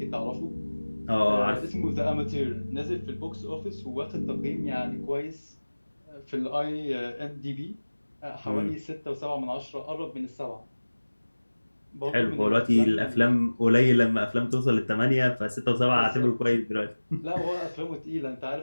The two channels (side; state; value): both; inverted; correlation -1.00